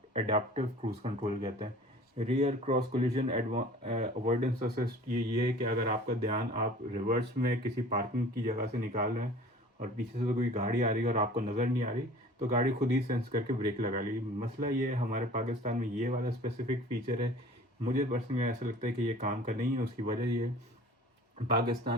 एडाप्टिव क्रूज कंट्रोल कहते हैं। Rear cross collision avoidance assist ये है कि अगर आपका ध्यान, आप रिवर्स में किसी पार्किंग की जगह से निकाल रहे हैं और पीछे से तो कोई गाड़ी आ रही है और आपको नज़र नहीं आ रही, तो गाड़ी खुद ही सेंस करके ब्रेक लगा ली। मसला ये है हमारे पाकिस्तान में ये वाला स्पेसिफिक फीचर है, मुझे पर्सनली ऐसा लगता है कि ये काम का नहीं है। उसकी वजह ये है,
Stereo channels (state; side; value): normal; both; correlation 0.45